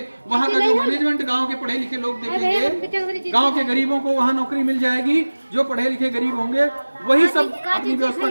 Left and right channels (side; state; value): both; inverted; correlation -1.00